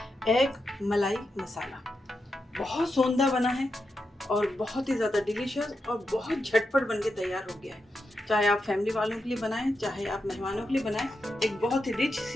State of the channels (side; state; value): both; normal; correlation 0.87